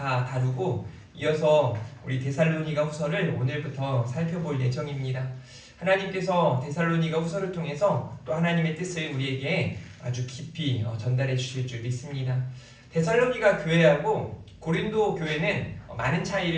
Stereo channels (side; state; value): both; identical; correlation 1.00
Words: 다루고 이어서 우리 데살로니가 후서를 오늘부터 살펴볼 예정입니다. 하나님께서 데살로니가 후서를 통해서 또 하나님의 뜻을 우리에게 아주 깊이 전달해 주실 줄 믿습니다. 데살로니가 교회하고 고린도 교회는 많은